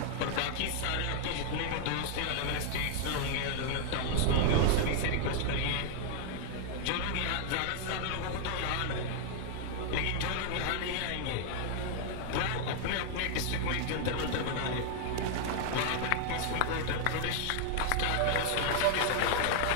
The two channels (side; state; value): both; different; correlation 0.00